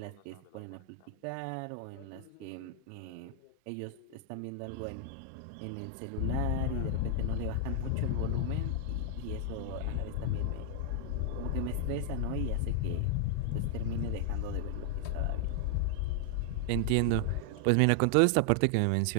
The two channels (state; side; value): different; both; correlation 0.00